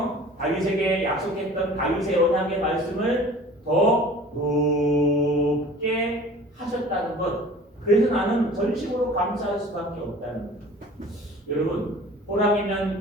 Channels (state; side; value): normal; both; correlation 0.45